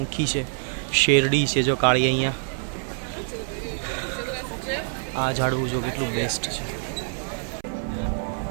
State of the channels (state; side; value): silent; left; 57 dB below the other